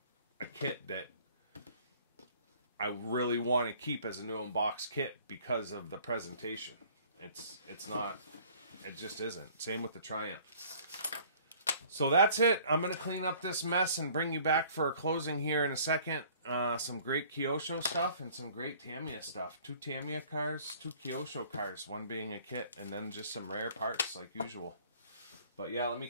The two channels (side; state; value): both; inverted; correlation -0.54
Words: kit that I really want to keep as a new unbox kit because of the presentation. It's not, it just isn't. Same with the Triumph. So that's it. I'm going to clean up this mess and bring you back for a closing here in a second. Some great Kyosho stuff and some great Tamiya stuff. 2 Tamiya cars, 2 Kyosho cars, one being a kit, and then just some rare parts like usual. But yeah, let me